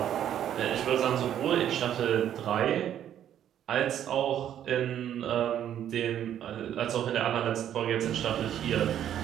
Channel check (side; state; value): left; quieter; 10.5 dB